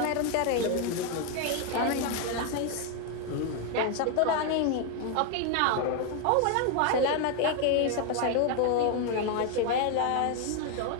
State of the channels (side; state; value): both; different; correlation 0.01